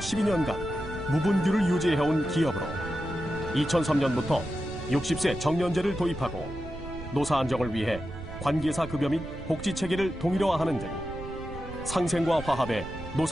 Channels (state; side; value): noise; right; rumble, 12 dB below the sound